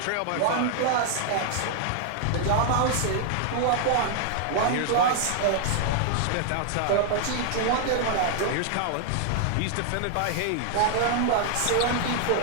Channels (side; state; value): both; different; correlation 0.00